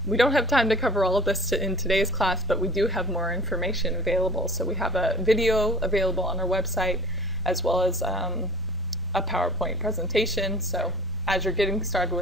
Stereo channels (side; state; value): both; normal; correlation 0.43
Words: we don't have time to cover all of this in today's class, but we do have more information available. So we have a video available on our website, as well as a PowerPoint presentation. So as you're getting started